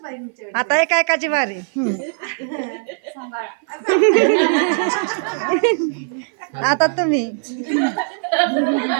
आता एक एकाची वारी. आता तुम्ही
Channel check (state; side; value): silent; left; 57 dB below the other